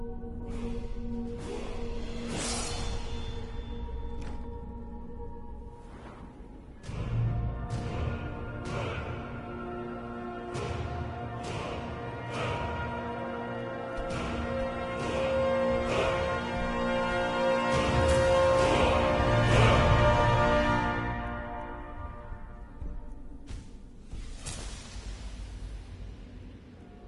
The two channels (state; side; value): identical; both; correlation 1.00